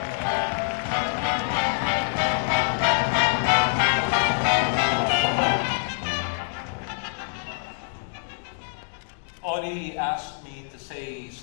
Audie asked me to say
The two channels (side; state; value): right; silent; 61 dB below the other